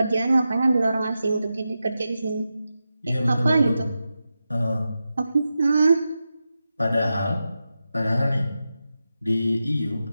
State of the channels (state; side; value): inverted; both; correlation -0.91